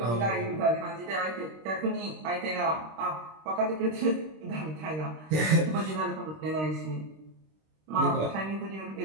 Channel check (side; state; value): left; late; 26 ms